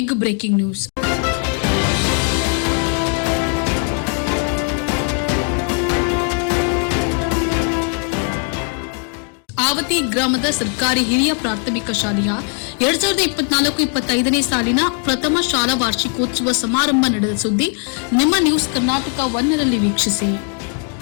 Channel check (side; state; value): right; quieter; 39.5 dB